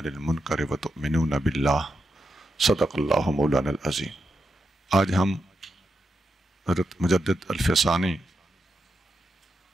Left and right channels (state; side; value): normal; both; correlation 0.86